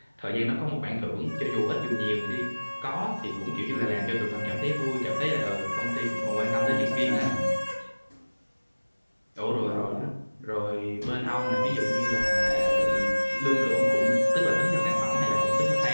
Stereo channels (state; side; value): inverted; both; correlation -1.00